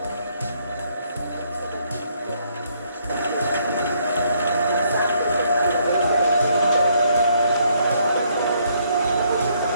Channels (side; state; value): both; inverted; correlation -0.70